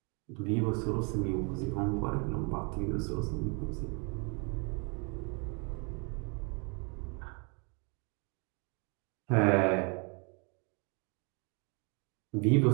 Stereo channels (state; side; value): quieter; left; 34.4 dB